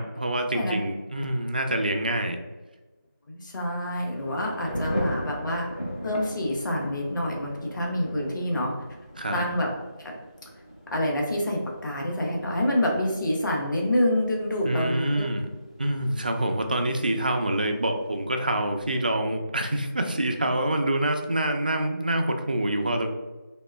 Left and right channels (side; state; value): both; inverted; correlation -0.76